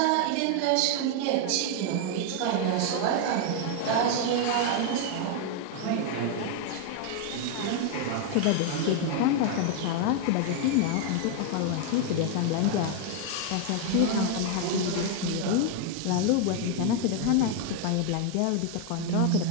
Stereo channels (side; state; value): both; different; correlation 0.00